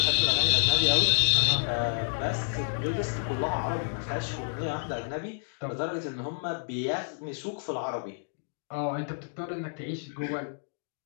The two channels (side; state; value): right; silent; digital silence